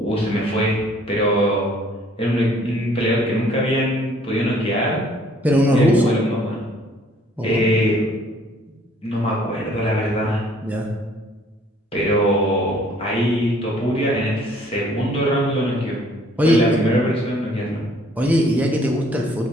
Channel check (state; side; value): normal; both; correlation 0.59